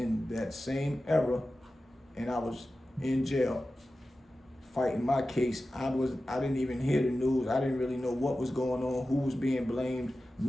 that same era, and I was in jail fighting my case. I didn't even hear the news. I didn't really know what was going on, who was being blamed,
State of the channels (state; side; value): normal; both; correlation 0.94